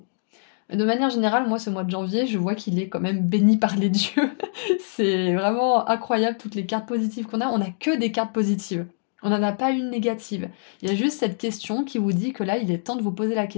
De manière générale, moi ce mois de janvier, je vois qu'il est quand même béni par les dieux. C'est vraiment incroyable toutes les cartes positives qu'on a. On n'a que des cartes positives. On n'en a pas une négative. Il y a juste cette question qui vous dit que là, il est temps de vous poser la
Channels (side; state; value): right; silent; digital silence